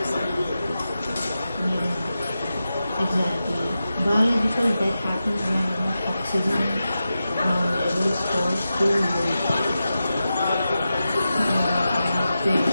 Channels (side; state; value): both; inverted; correlation -0.91